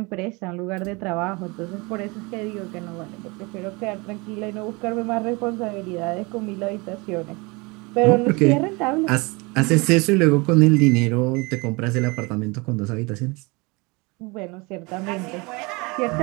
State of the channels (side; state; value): left; quieter; 26.8 dB